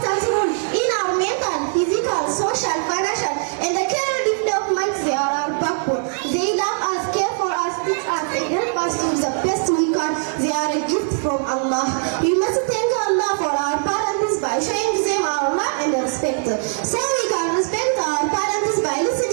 role in our mental, physical, social, financial, and the career development. They are our backbone. They love us, care for us, teach us, and help us to do the best we can. They are a gift from Allah. We must thank Allah for our parents by showing them our love and respect. So we can respect our parents by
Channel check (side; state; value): left; silent; 60 dB below the other